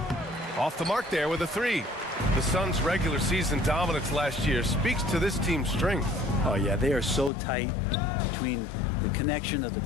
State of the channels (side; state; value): right; drops out; at 7.3 s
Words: Off the mark there with a 3. The Suns' regular season dominance last year speaks to this team's strength. Oh, yeah, they are so tight between the connection of the